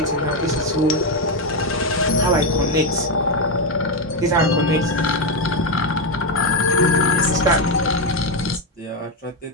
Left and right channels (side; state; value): both; normal; correlation 0.07